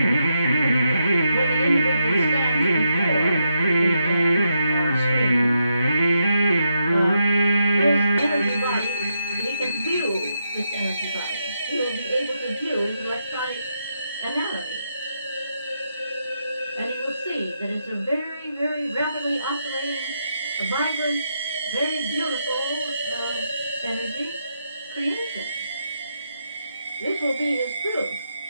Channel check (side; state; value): both; inverted; correlation -0.81